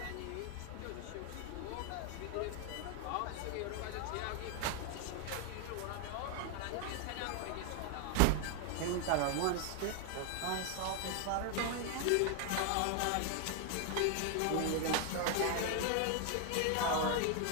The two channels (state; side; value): different; both; correlation 0.00